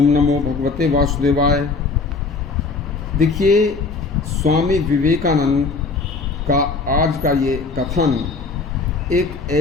नमो भगवते वासुदेवाय। देखिए, स्वामी विवेकानंद का आज का ये कथन एक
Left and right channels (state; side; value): quieter; right; 4.1 dB